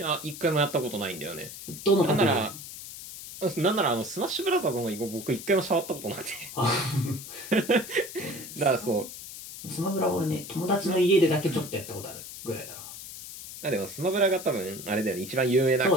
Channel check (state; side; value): noise; left; hiss, 12 dB below the sound